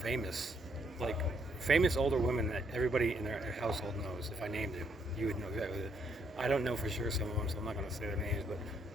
like famous older women that everybody in their household knows. If I named them, you would know exactly. I don't know for sure some of them, so I'm not going to say their names. But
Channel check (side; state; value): both; normal; correlation 0.72